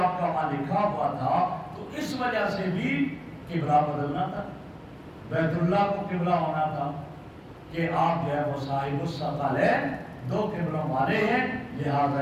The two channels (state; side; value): identical; both; correlation 1.00